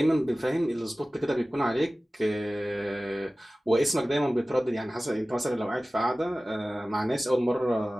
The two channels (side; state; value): both; normal; correlation 0.97